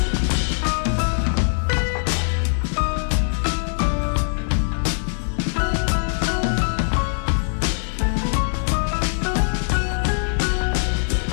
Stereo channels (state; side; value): silent; right; digital silence